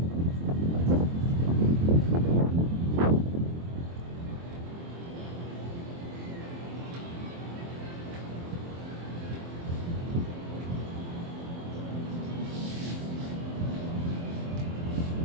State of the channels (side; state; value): left; late; 23 ms